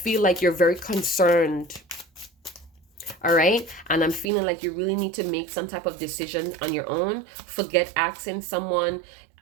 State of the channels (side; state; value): left; drops out; at 4.3 s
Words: like you're very concerned. All right. And I'm feeling like you really need to make some type of decision on your own. Forget asking someone,